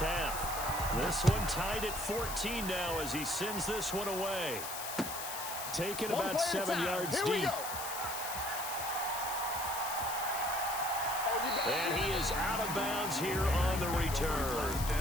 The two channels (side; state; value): left; noise; hiss, 6 dB below the sound